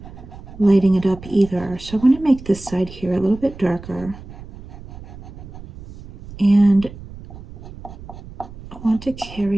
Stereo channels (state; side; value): noise; right; rumble, 15 dB below the sound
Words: lighting it up either. So I want to make this side here a little bit darker, and I want to